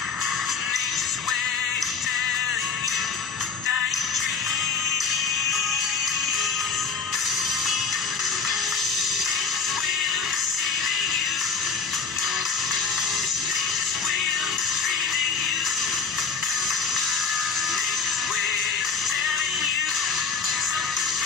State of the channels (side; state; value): right; quieter; 5.2 dB